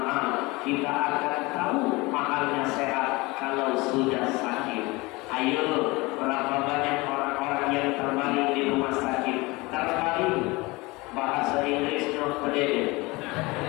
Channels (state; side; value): quieter; right; 23.4 dB